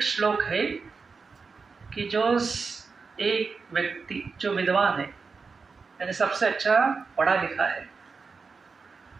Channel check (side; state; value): left; quieter; 4.8 dB